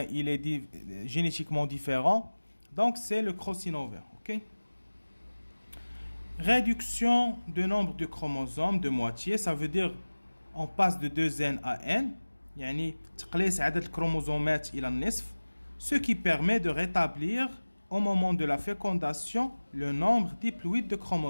il est génétiquement différent. Donc c'est le crossing over. OK. Réduction de nombre de chromosomes de moitié, ça veut dire on passe de 2n à n, يعني تقليص عدد الكروموزومات إلى النصف, ce qui permet de rétablir au moment de la fécondation le nombre diploïde de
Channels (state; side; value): inverted; both; correlation -1.00